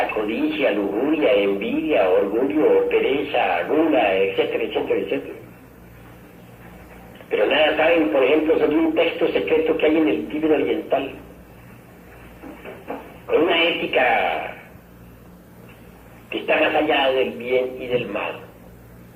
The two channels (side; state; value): both; identical; correlation 1.00